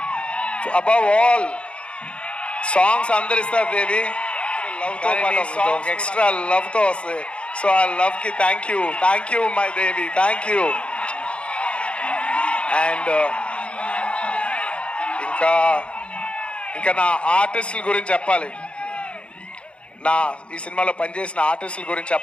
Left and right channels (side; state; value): right; late; 0.059 ms